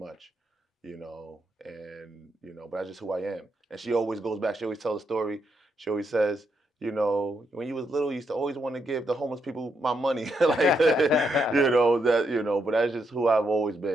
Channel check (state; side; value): normal; both; correlation 0.79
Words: But that's just who I am. And she always goes back. She always tells a story. She always says, when you was little, you used to always want to give the homeless people my money, like, but that's just who I've always